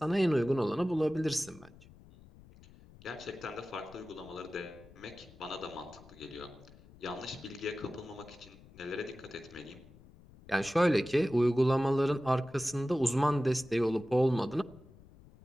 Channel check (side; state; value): left; noise; rumble, 22 dB below the sound